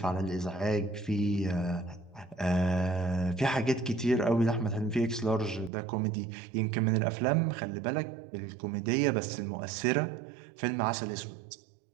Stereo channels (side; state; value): left; drops out; at 5.7 s